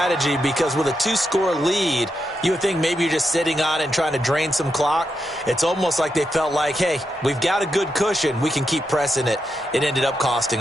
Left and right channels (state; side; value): normal; both; correlation 0.85